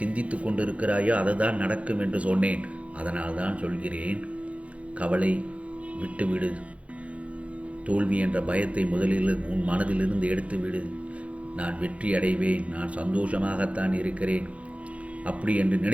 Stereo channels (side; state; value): left; late; 0.064 ms